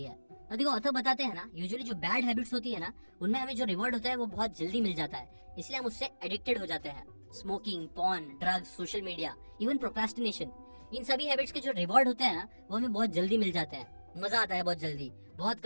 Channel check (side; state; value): both; inverted; correlation -1.00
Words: है। तो देखो ऑथर बताते हैं ना, यूजुअली जो बैड हैबिट्स होती है ना उनमें हमें जो रिवॉर्ड होता है वो बहुत जल्दी मिल जाता है, इसलिए हम उससे एडिक्टेड हो जाते हैं। Smoking, porn, drugs, social media, even procrastination, इन सभी हैबिट्स के जो रिवॉर्ड होते हैं ना वो हमें बहुत जल्दी मिल जाते हैं, मजा आता है बहुत जल्दी, बहुत